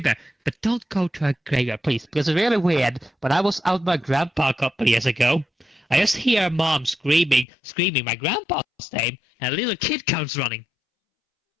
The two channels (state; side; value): drops out; right; at 7.5 s